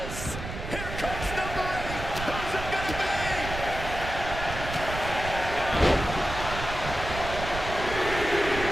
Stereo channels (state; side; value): noise; right; rumble, 7 dB below the sound